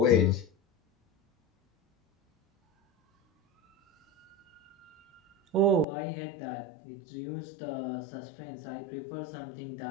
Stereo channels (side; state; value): right; drops out; at 5.9 s